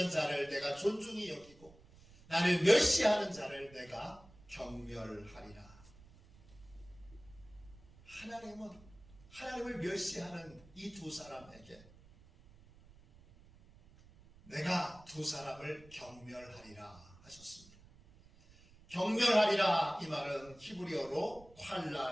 자를 내가 존중히 여기고 나를 멸시하는 자를 내가 경멸하리라. 하나님을 멸시하는 이 두 사람에게 내가 두 사람을 경멸하리라 하셨습니다. 경멸하리라 이 말은 히브리어로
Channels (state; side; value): noise; right; rumble, 23 dB below the sound